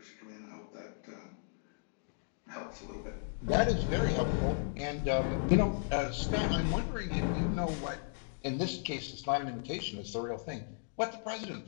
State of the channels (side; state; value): right; silent; digital silence